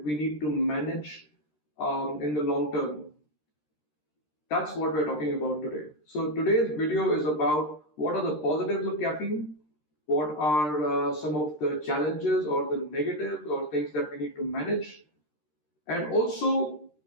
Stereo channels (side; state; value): right; late; 13 ms